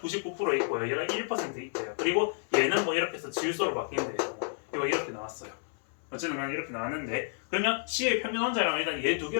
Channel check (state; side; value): silent; right; 57 dB below the other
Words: 있고요. 얘가 1% 있대요. 그리고 얘는 뭐 이렇게 해서 질소로 바뀐대요. 이거 이렇게 나왔어요. 어쨌든 난 이렇게 나왔는데 그러면 C의 평균 원자량은 일단 얘 두